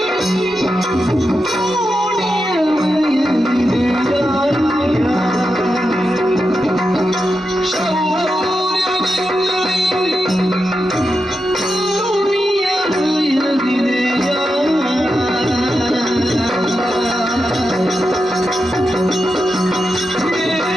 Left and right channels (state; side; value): normal; both; correlation 0.88